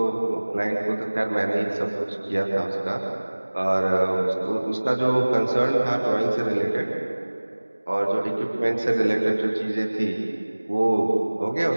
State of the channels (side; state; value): both; inverted; correlation -1.00